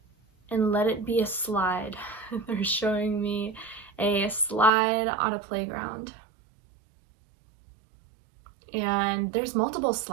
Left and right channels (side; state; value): left; drops out; at 4.7 s